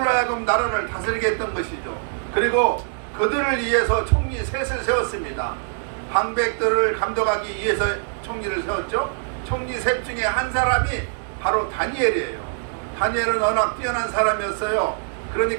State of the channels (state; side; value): silent; left; digital silence